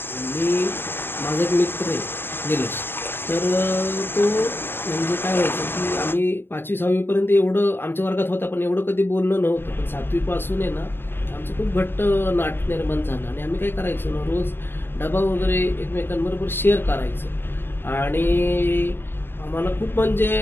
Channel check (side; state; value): right; late; 0.10 ms